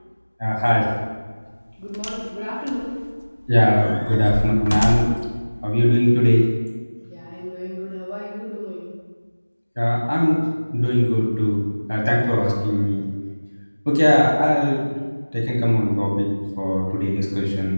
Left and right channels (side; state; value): both; inverted; correlation -1.00